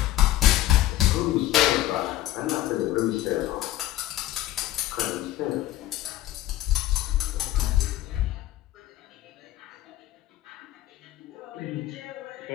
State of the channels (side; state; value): right; quieter; 14.7 dB